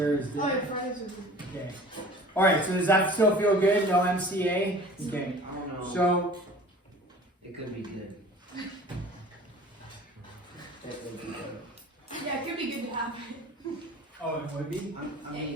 Oh, your Fridays are good. Okay. All right. So does that still feel good? No MCA. Okay. I don't know. So It could be good. That could be good. Yeah, it could be good to have. oh, it would be. I'm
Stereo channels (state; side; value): normal; both; correlation 0.45